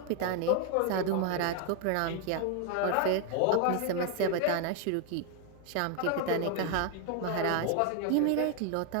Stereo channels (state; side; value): different; both; correlation 0.00